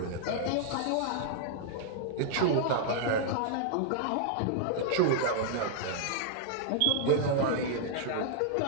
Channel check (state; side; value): different; both; correlation -0.01